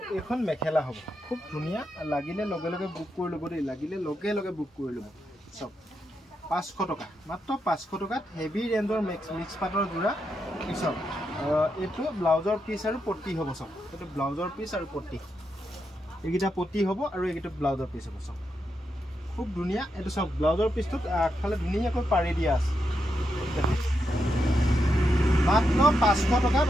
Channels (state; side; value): normal; both; correlation 0.84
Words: এখন মেখেলা হ'ব খুব ধুনিয়া লাগিলে লগে লগে বুক কৰি ল'ব দেই লাগিলে লগে লগে বুক কৰি ল'ব সব 500 টকা মাত্ৰ 500 টকাত হেভি ৰেঞ্জৰ মিক্স পাটৰ জোৰা সব এটো ব্লাউজৰ পিস আৰু পট্টি হ'ব সব এটো ব্লাউজৰ পিস আৰু পট্টি এইগিটা পট্টি হ'ব আৰু এইগিটা ব্লাউজৰ পিস হ'ব সব খুব ধুনিয়া এটো সব ব্লাউজৰ পিসটোত আগফালে ধুনিয়াকৈ পাৰি দিয়া আছে মাত্ৰ 500 টকাত